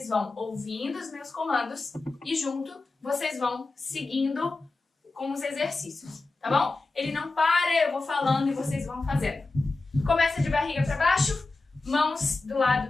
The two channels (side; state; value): right; quieter; 3.4 dB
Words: vão ouvindo os meus comandos e junto vocês vão seguindo com os exercícios, tá bom? Ele não para, eu vou falando e vocês vão fazendo. Começa de barriga para baixo. Mãos do